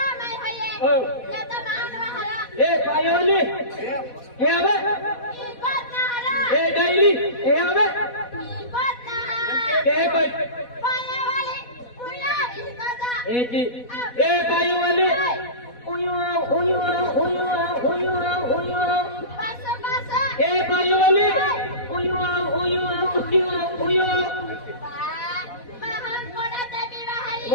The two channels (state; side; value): late; right; 4.1 ms